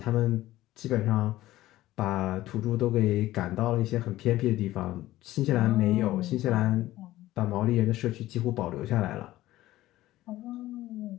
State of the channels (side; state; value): right; quieter; 15.9 dB